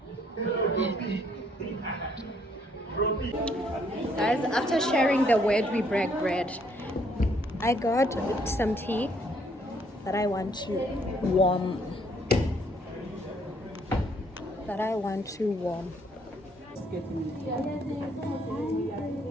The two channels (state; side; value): normal; both; correlation 0.67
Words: Guys, after sharing the word, we break bread. I got some tea that I want to warm.